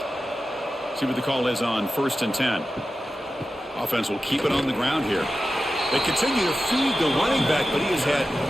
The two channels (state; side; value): normal; both; correlation 0.93